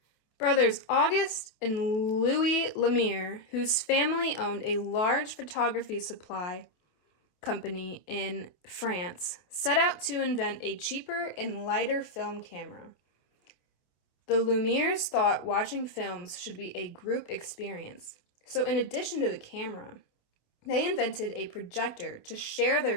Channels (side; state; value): right; late; 28 ms